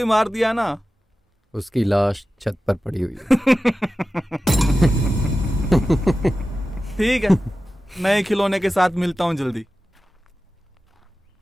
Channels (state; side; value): normal; both; correlation 0.94